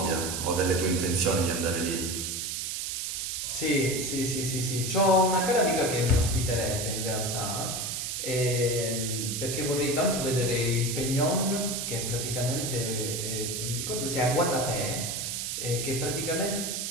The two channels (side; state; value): right; noise; hiss, 3 dB below the sound